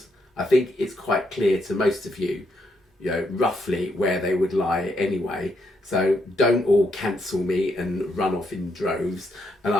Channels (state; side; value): normal; both; correlation 0.77